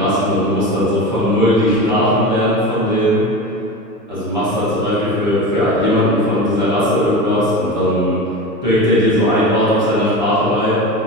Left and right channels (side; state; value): both; normal; correlation 0.28